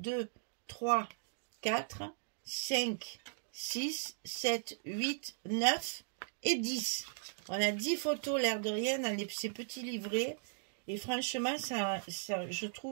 3, 4, 5, 6, 7, 8, 9 et 10. On a 10 photos, l'air de rien, dans ces petits livrets. Et franchement, je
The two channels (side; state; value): left; silent; digital silence